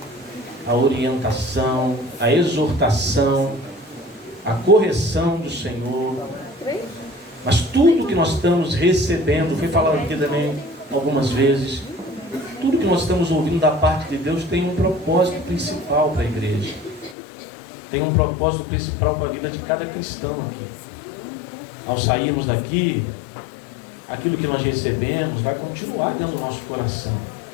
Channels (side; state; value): right; drops out; at 17.2 s